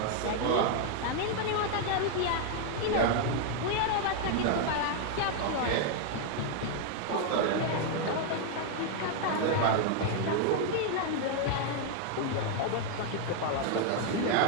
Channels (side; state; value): both; different; correlation 0.00